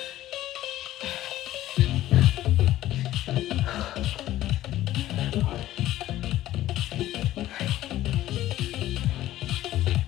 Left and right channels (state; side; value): quieter; right; 14.4 dB